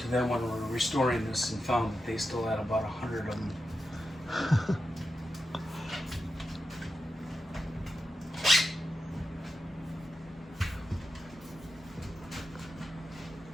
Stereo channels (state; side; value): normal; both; correlation 0.89